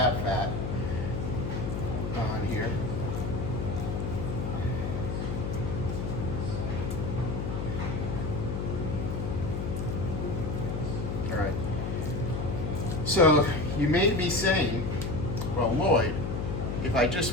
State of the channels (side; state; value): left; noise; hum, 2 dB below the sound